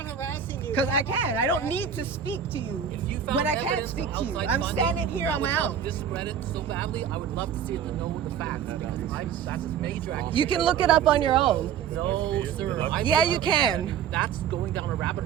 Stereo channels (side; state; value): left; quieter; 8.1 dB